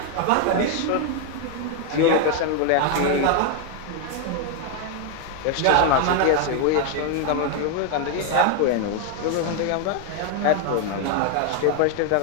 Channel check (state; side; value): different; both; correlation 0.01